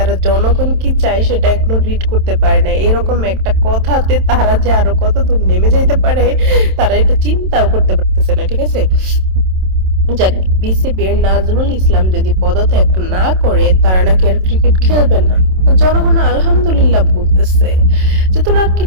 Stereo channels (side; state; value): left; late; 27 ms